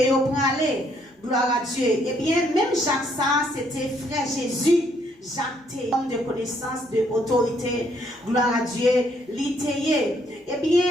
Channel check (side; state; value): both; normal; correlation 0.69